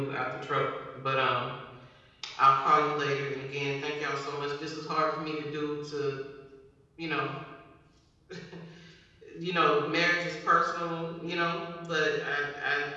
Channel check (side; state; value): both; identical; correlation 1.00